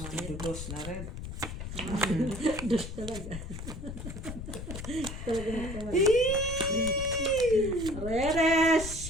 dudos na red. Dus talaga. Talaga na come on. Reddish.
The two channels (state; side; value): noise; left; rumble, 8 dB below the sound